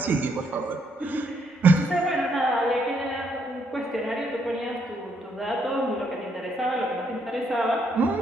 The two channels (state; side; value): normal; both; correlation 0.73